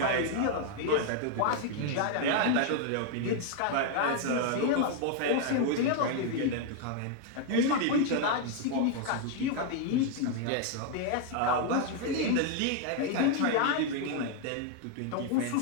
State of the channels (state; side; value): different; both; correlation 0.00